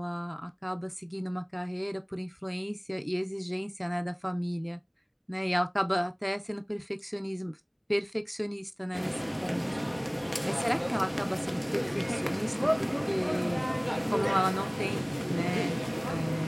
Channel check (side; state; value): both; identical; correlation 1.00